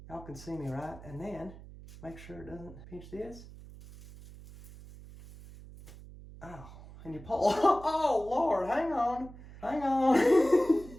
Y'all can see me, right? And then make sure it doesn't pinch this. Oh, and you pull. Oh, Lord, hang on.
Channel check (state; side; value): noise; right; hum, 17 dB below the sound